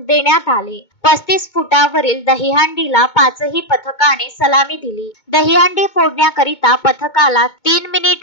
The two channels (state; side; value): late; right; 2.2 ms